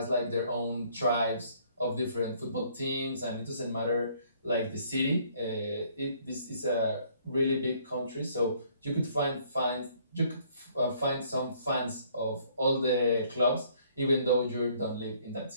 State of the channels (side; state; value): both; inverted; correlation -0.62